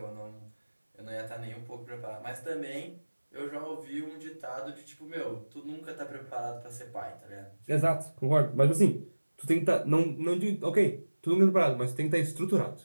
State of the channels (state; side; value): inverted; both; correlation -1.00